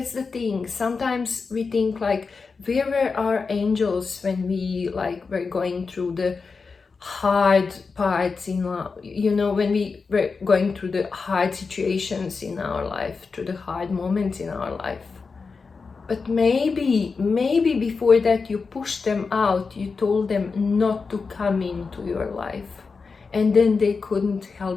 the thing. Sometimes we think, like, where were our angels when we, like, were going through the hard parts in life, you know, when we were going through the hard situations in our life, through the hard moments in our life. But maybe before that you pushed them out, you told them not to come into your life, and then they couldn't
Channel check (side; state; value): right; quieter; 4.7 dB